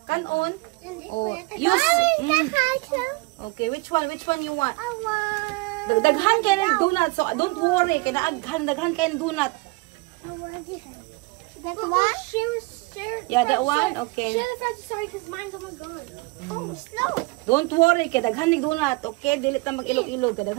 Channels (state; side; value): quieter; left; 25.4 dB